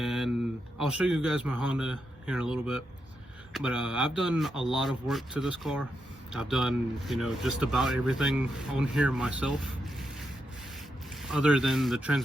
I'll show you guys my Honda here in a little bit, but I've done a lot of work to this car. I've done, you know, just about everything on here myself, other than the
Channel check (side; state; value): both; normal; correlation 0.84